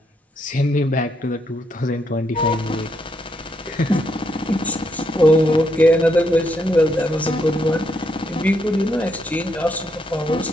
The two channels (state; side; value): normal; both; correlation 0.77